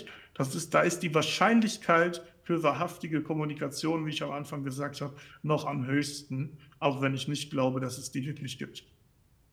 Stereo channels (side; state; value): both; identical; correlation 1.00